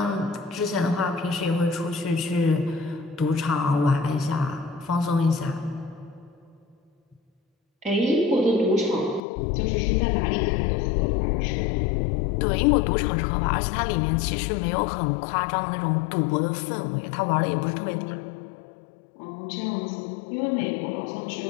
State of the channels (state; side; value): drops out; right; at 9.2 s